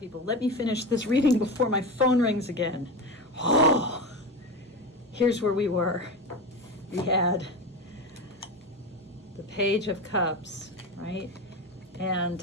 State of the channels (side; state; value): both; normal; correlation 0.23